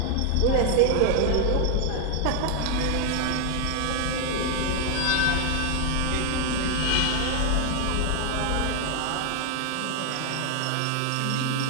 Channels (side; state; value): both; different; correlation 0.00